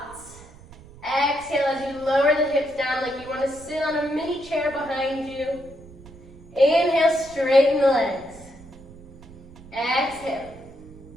Exhale as you lower the hips down like you want to sit on a mini chair behind you. Inhale, straighten the legs. Exhale.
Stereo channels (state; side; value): noise; right; rumble, 20 dB below the sound